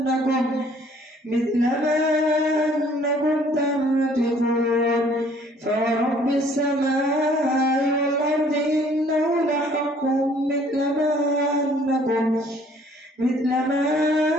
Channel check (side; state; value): both; normal; correlation 0.58